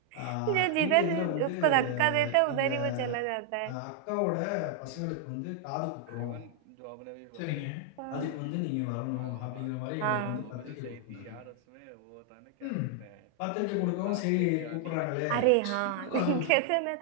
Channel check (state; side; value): different; both; correlation 0.00